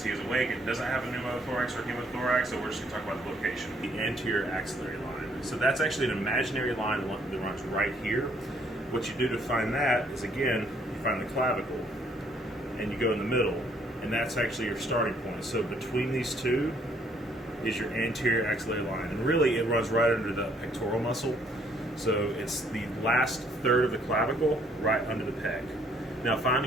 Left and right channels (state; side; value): normal; both; correlation 0.65